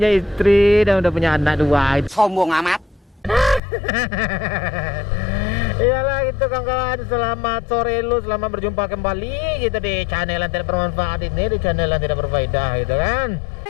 istri dan udah punya anak 2. Sombong amat. Iyalah gitu kawan-kawan, selamat sore lu, selamat berjumpa kembali gitu di channel yang tidak bermanfaat ini, di channel yang tidak berfaedah gitu kan.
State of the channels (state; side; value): drops out; right; at 3.6 s